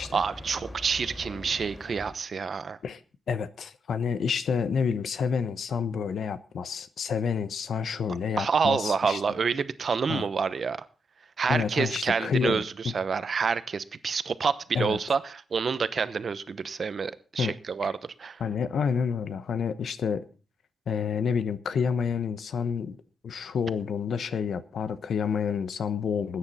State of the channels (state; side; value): normal; both; correlation 0.77